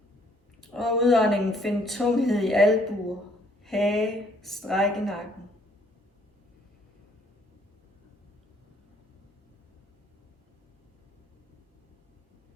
Og udåndingen find tunghed i albuer, hage, stræk i nakken.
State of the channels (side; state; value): both; normal; correlation 0.63